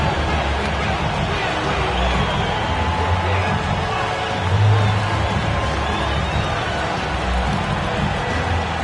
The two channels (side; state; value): both; identical; correlation 1.00